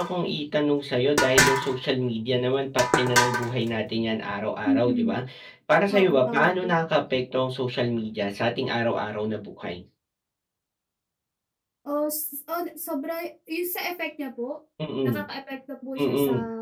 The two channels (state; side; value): identical; both; correlation 1.00